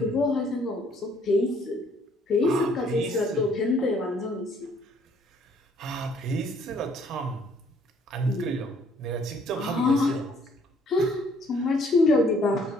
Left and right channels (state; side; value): normal; both; correlation 0.63